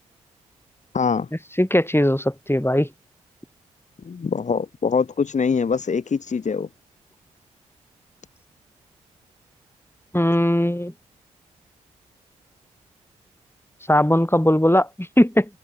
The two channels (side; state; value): both; normal; correlation 0.83